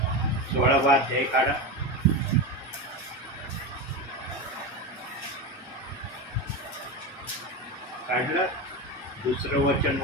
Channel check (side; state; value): both; normal; correlation 0.19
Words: 16वा अध्याय काढा. काढलं. दुसरं वचन